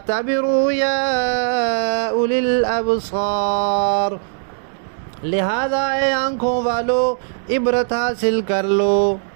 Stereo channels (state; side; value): silent; left; digital silence